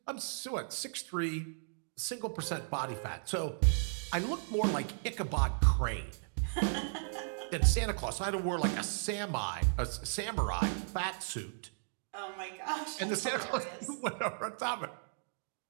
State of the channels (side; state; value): left; silent; digital silence